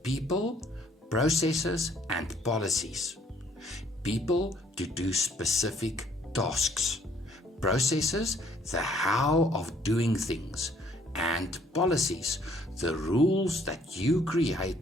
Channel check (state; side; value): normal; both; correlation 0.64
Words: people, processes, and policies. People to do specific tasks, processes the how of doing things, and policies the rules that you